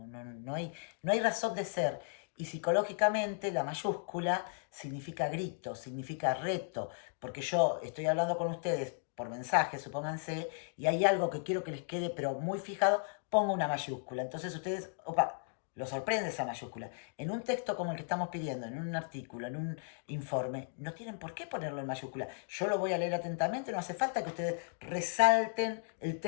no hay razón de ser. Y psicológicamente la mayúscula significa grito, significa reto, porque yo estoy hablando con ustedes por mensaje, supónganse, y hay algo que quiero que les quede, pero muy fijado, pongo una mayúscula. Entonces ustedes, opa, lo sorprende esa mayúscula. En un texto como el que estamos pidiendo, en un artículo, en un informe, no tienen por qué ponerlo en mayúscula. Yo lo voy a leer atentamente, no hace falta que ustedes resalten el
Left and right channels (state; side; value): silent; right; digital silence